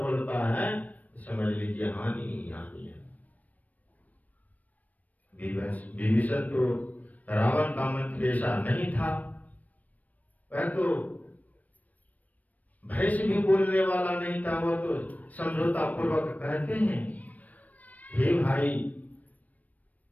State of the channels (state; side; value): late; right; 0.075 ms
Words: बोलता है तो समझ लीजिए हानि ही हानि है। विभीषण तो रावण का मंत्री ऐसा नहीं था, वह तो भय से भी बोलने वाला नहीं था। वो तो समझौता पूर्वक कहते हैं हे भाई